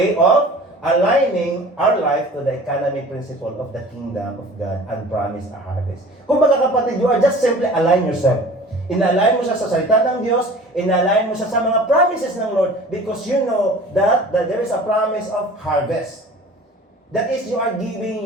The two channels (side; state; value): both; normal; correlation 0.44